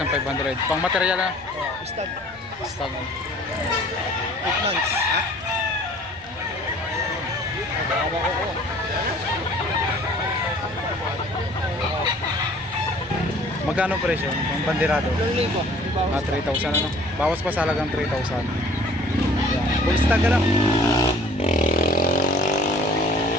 Pang material na? Stag. Stag. 8 months. Magkano ang presyo? Ang bandirado? 2,000. 3,000 ano? Bawas pa sa halagang 3,000. Full stag ka lang.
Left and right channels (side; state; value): right; noise; rumble, 24 dB below the sound